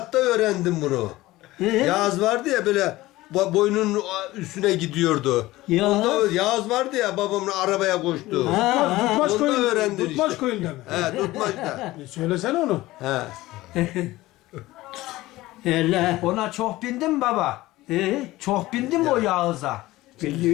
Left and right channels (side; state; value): right; quieter; 18.0 dB